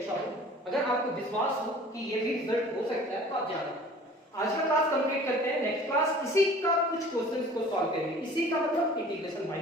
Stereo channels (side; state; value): both; normal; correlation 0.47